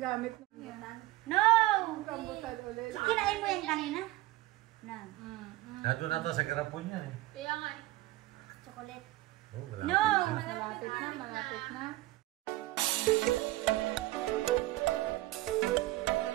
na. Rambutan? No! Rambutan ulit. Kinain mo yan kanina? No. Nandun na ito sa garapon yan eh. Kaya nga eh. Chocolate. Oh, malapit No! na. Malapit na, malapit na.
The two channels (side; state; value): left; quieter; 17.9 dB